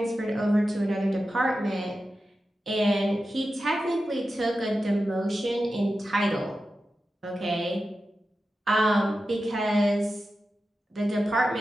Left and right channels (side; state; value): both; normal; correlation 0.92